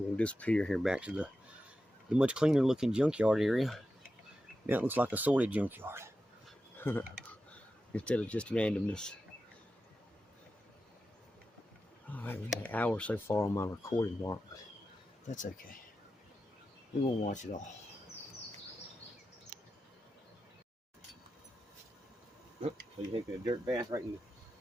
disappear here back to the much cleaner looking junkyard area. Now it looks like a sorted junkyard. Instead of just randomness. All right, we got an hour so far on my recording mark. That's okay. We won't watch it all. Oh, so you're taking a dirt bath right in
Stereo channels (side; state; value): both; normal; correlation 0.91